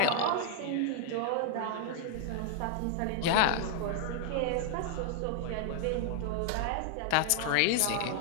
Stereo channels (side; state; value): both; different; correlation 0.00